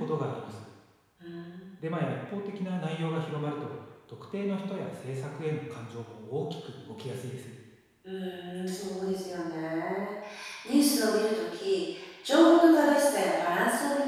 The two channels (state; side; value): identical; both; correlation 1.00